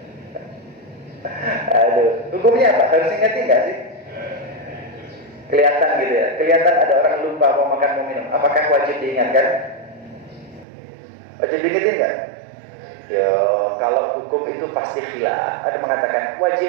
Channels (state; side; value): drops out; left; at 10.7 s